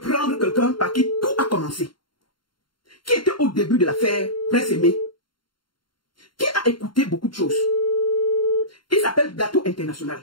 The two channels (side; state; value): right; late; 0.72 ms